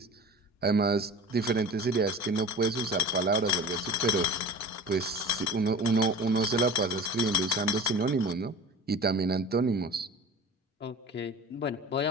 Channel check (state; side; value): normal; both; correlation 0.36